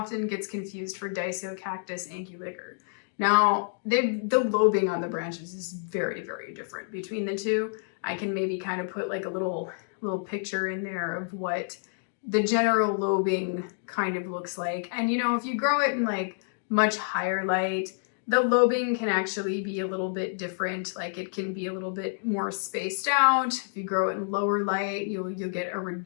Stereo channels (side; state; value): right; silent; digital silence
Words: gets confused for Cactus anguliger. Now, the lobing on the branches is very, very different between the two. I can maybe kind of put like a little picture in there of what the general lobing kind of looks like. And you know, if you grow it in like much higher light, the lobing can actually be a little bit different. Like it can be a little bit more spaced out. If you grow it in lower light, you'll get a